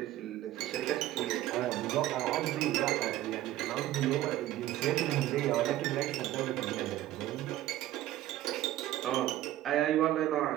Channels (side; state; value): left; quieter; 14.4 dB